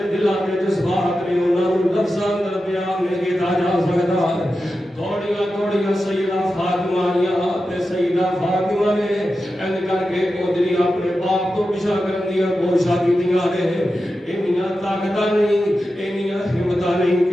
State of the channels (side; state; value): both; normal; correlation 0.91